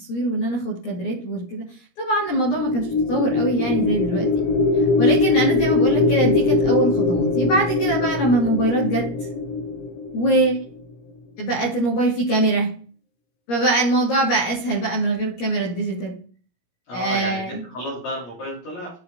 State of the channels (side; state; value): right; late; 17 ms